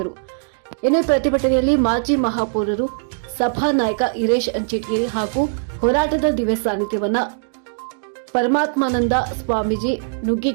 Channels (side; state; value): left; silent; digital silence